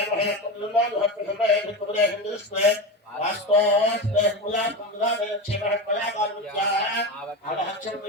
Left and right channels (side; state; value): both; normal; correlation 0.20